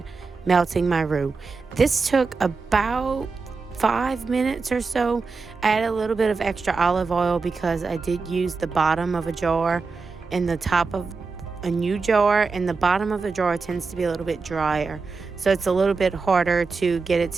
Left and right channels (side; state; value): left; quieter; 4.5 dB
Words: melting my roux. This took about 5 minutes or so. I added a little bit of extra olive oil because I did use the bottom of a jar and the top of a new jar, and the bottom of the jar tends to be a little bit drier, so it's a little bit harder to get it